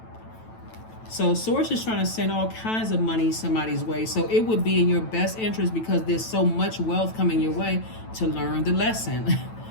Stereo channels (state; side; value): late; right; 9.1 ms